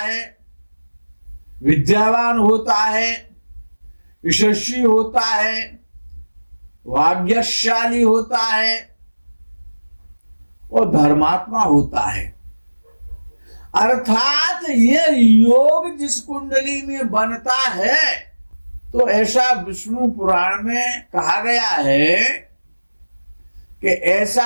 विद्यावान होता है, यशस्वी होता है, भाग्यशाली होता है और धर्मात्मा होता है। अर्थात ये योग जिस कुंडली में बनता है, तो ऐसा विष्णु पुराण में कहा गया है कि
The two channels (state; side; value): inverted; both; correlation -1.00